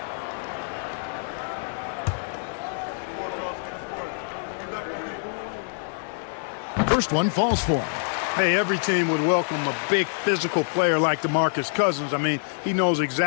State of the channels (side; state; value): right; silent; digital silence